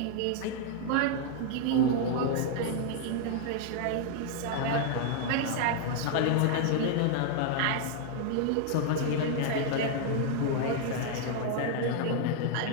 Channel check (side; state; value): both; different; correlation 0.00